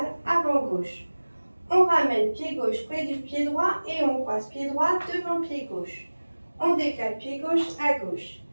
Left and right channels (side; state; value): both; inverted; correlation -1.00